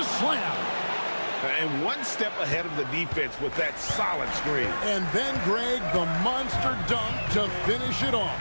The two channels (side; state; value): both; inverted; correlation -1.00